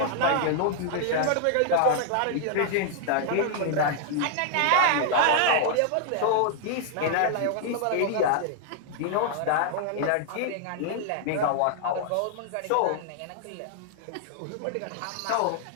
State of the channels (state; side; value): different; both; correlation -0.01